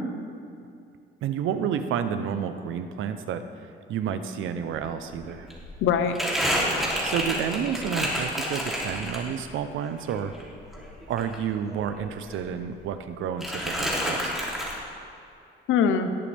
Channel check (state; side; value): normal; both; correlation 0.30